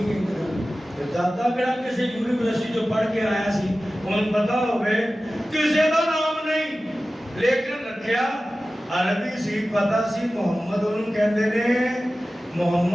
نہیں دادا کہا کسی یونیورسٹی جو پڑھ کے آیا سی ان پتا ہوئے کسی دا نام نہیں لیکن رکھیا عربی سی پتا سی محمد انہوں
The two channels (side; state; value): both; normal; correlation 0.95